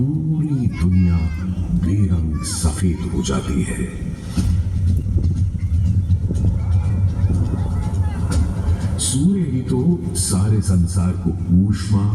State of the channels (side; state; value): both; identical; correlation 1.00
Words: दुनिया बेरंग सफेद हो जाती है। सूर्य ही तो सारे संसार को ऊष्मा,